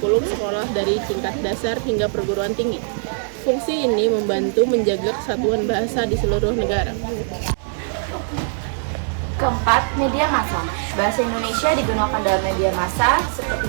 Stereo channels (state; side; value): silent; left; 65 dB below the other